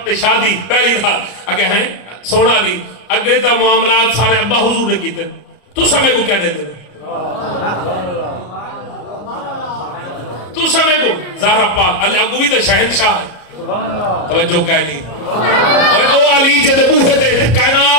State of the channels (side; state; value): right; late; 33 ms